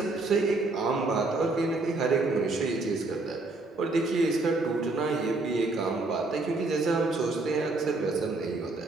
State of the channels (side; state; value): left; quieter; 3.3 dB